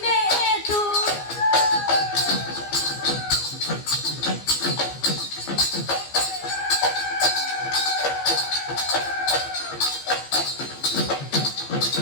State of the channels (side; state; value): right; late; 15 ms